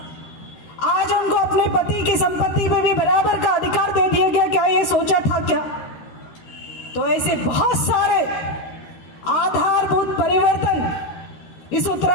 आज उनको अपने पति की संपत्ति में भी बराबर का अधिकार दे दिया गया, क्या ये सोचा था क्या? तो ऐसे बहुत सारे आधारभूत परिवर्तन इस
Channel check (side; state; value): right; late; 13 ms